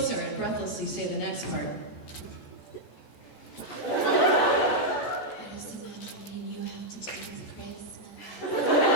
and breathlessly say the next part. I just imagine me and you have to deal with Christmas.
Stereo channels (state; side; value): late; right; 14 ms